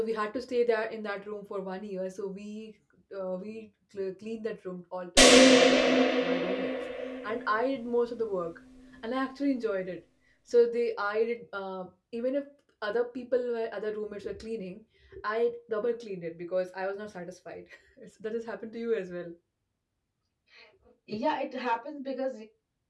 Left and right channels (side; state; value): both; identical; correlation 1.00